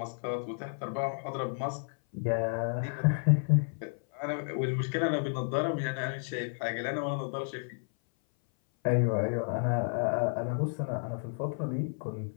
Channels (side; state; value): right; silent; 57 dB below the other